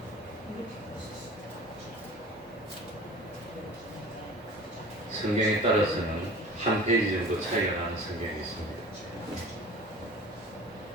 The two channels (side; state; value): both; normal; correlation 0.41